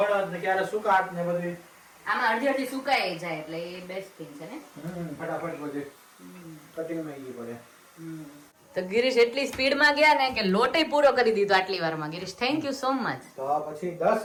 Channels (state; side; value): identical; both; correlation 1.00